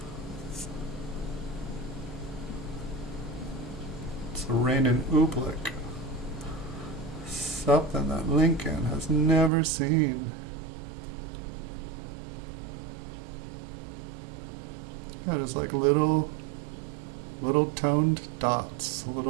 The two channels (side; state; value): left; drops out; at 9.5 s